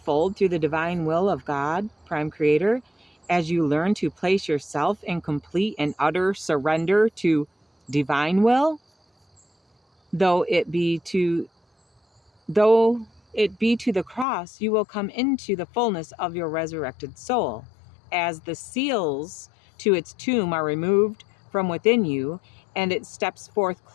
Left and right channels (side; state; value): right; drops out; at 14.2 s